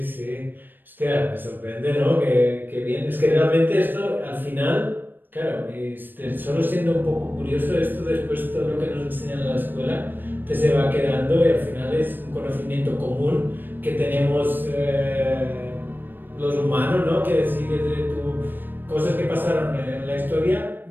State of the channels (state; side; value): late; left; 0.093 ms